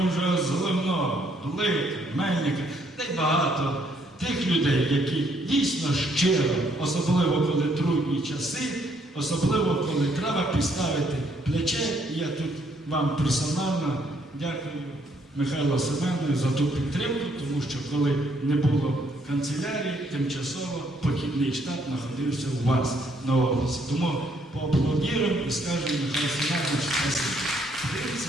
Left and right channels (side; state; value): both; normal; correlation 0.69